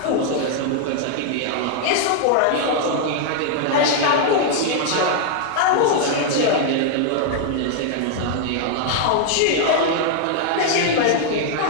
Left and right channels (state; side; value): different; both; correlation 0.00